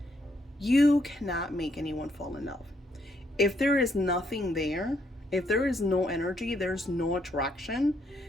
you cannot make anyone fall in love. If there is nothing there, if there is no energy, there's no attraction,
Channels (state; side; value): normal; both; correlation 0.73